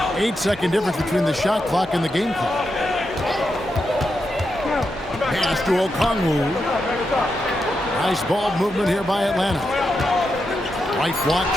8-second difference between the shot clock and the game clock. Pass to Okongwu. Nice ball movement here by Atlanta. Right block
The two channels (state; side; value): normal; both; correlation 0.85